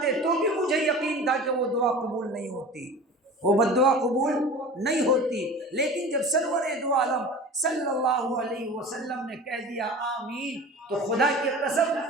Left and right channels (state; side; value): normal; both; correlation 0.37